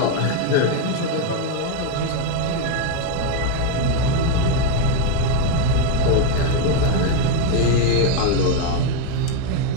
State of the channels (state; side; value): different; both; correlation 0.01